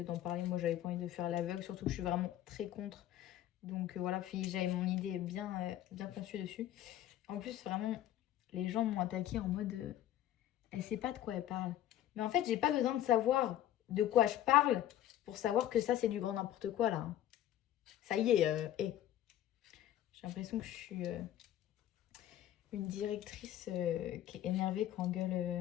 parler. Moi, j'avais pas envie de faire l'aveugle, surtout que je suis vraiment très contre. Donc voilà, puis j'avais mon idée bien conçue dessus. En plus, vraiment, les gens m'ont attaqué en mode elle sait pas de quoi elle parle. Mais en fait, j'ai pas besoin de savoir de quoi je parle pour savoir que ça, c'est du grand n'importe quoi là, hein. Ça y est, j'ai l'impression que je suis une directrice qui est énervée quand on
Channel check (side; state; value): right; quieter; 12.4 dB